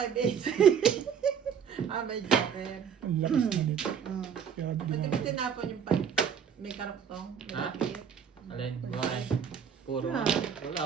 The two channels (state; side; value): quieter; left; 7.5 dB